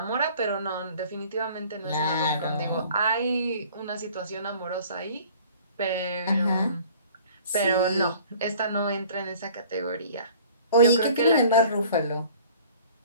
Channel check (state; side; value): inverted; both; correlation -0.50